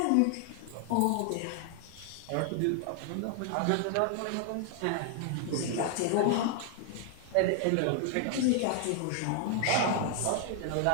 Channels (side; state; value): both; different; correlation 0.00